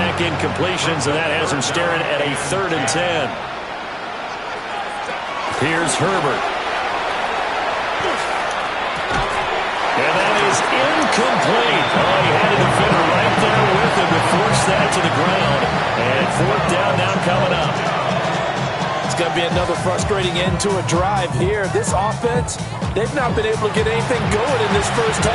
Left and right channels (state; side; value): identical; both; correlation 1.00